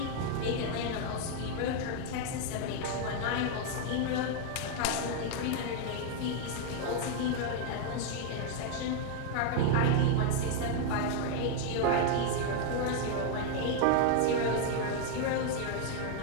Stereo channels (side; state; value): both; different; correlation 0.00